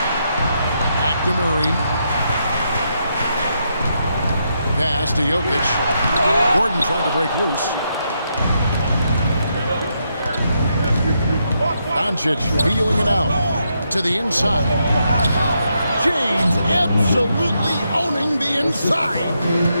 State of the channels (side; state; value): both; inverted; correlation -0.80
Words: Back to Murray. Pass to Jokic. Gordon trying to break loose. Doncic feeling it out to the inside. James absolutely owning the inside.